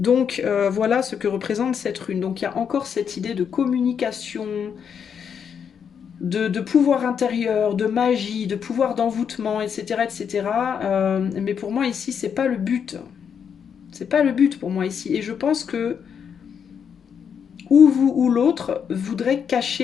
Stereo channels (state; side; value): quieter; right; 7.4 dB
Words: voilà ce que représente cette rune. Donc il y a encore cette idée de communication, de pouvoir intérieur, de magie, de pouvoir d'envoûtement, etc. etc. Mais pour moi ici, c'est pas le but. C'est pas le but pour moi ici. Et je pense que ou vous ou l'autre voudrait